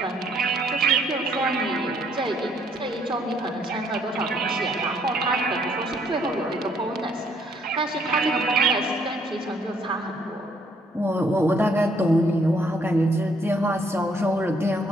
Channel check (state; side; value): normal; both; correlation 0.67